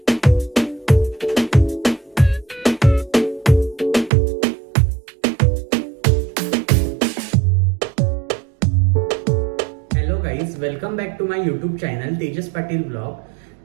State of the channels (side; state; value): left; drops out; at 4.1 s